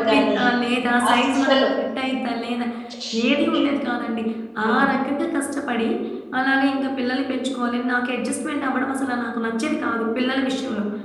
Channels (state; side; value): identical; both; correlation 1.00